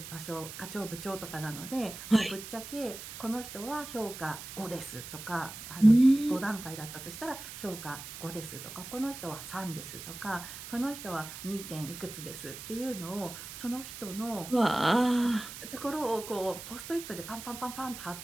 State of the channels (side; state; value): right; noise; hiss, 11 dB below the sound